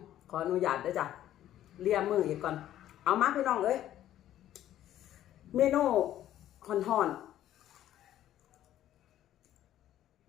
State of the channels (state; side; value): quieter; right; 12.3 dB